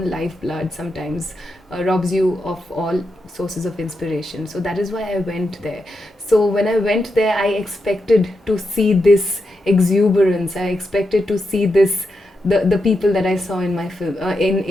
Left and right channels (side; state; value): both; normal; correlation 0.86